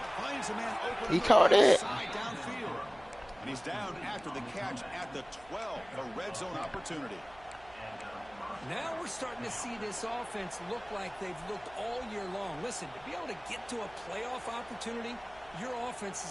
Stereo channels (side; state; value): right; noise; hum, 24 dB below the sound